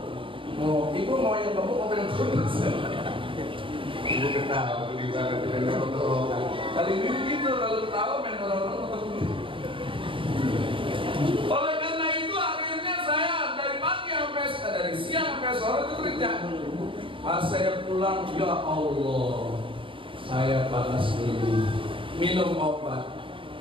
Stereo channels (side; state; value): left; late; 0.25 ms